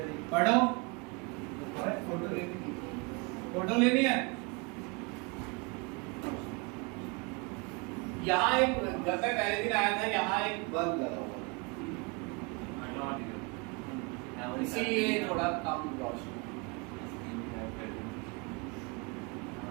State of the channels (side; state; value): left; quieter; 29.6 dB